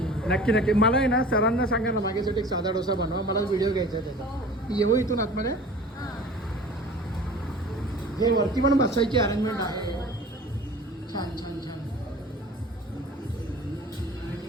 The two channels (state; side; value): normal; both; correlation 0.42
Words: नक्की नक्की. मला आहे ना सरांना सांगा ना माझ्यासाठी एक साधा डोसा बनवा. मला व्हिडिओ घ्यायचा आहे त्याचा. येऊ इथून आतमध्ये. हे वरती पण बसायची अरेंजमेंट आहे. छान छान छान.